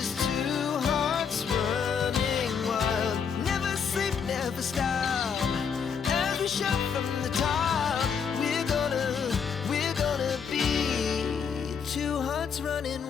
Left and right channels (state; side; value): quieter; right; 6.7 dB